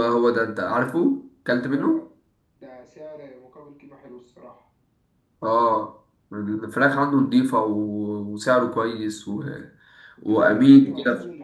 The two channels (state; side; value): identical; both; correlation 1.00